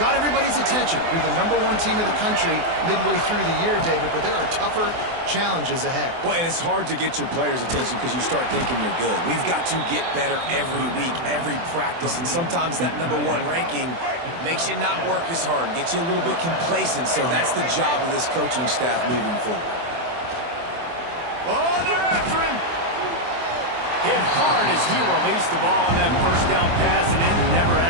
everybody's attention. You're the #1 team in the country midway through the year, David, but there are tougher challenges ahead. Well, and it's hard to get your players' attention because you start thinking you're good. We've got to get better every week, every practice, and sometimes that #1 ranking makes you not work as hard, gets you a little bit complacent, so that's the job of this coaching staff moving forward. Oh, they're after him. Hit hard as he released the ball on that first down pass, and it never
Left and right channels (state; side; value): late; left; 24 ms